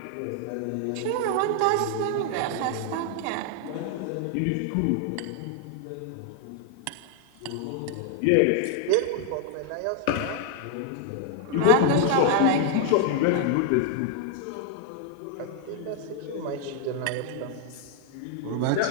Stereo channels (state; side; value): different; both; correlation 0.00